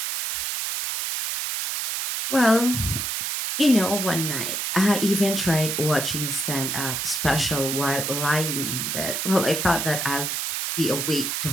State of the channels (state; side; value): noise; right; hiss, 2 dB below the sound